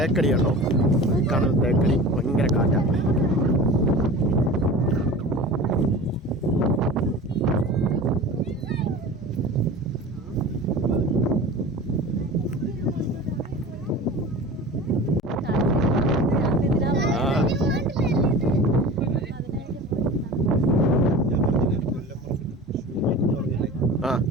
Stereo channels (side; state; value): both; normal; correlation 0.36